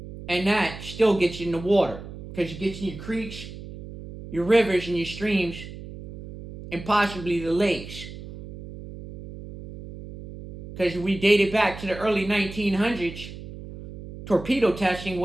And that still gets you in the water. Because it gets in your creeks, your rivers, and your streams, and possibly the lakes. Because if we date it back to the early 1900s, torpedo testing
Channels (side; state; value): right; noise; hum, 13 dB below the sound